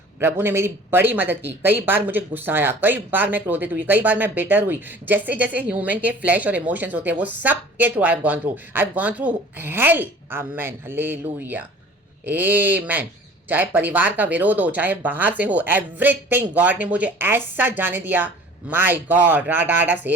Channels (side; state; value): both; normal; correlation 0.46